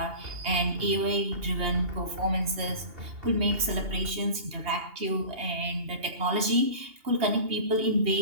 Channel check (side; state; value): left; late; 2.8 ms